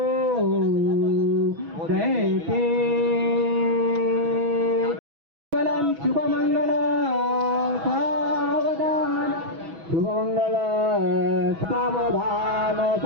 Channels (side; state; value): left; late; 6.1 ms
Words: दैते शुभमंगल सावधान. शुभमंगल सावधान